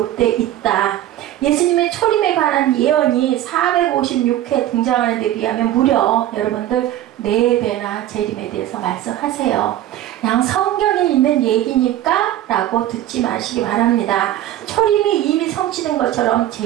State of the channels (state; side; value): quieter; left; 13.0 dB